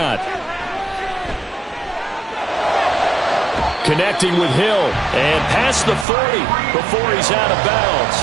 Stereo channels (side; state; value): left; drops out; at 6.1 s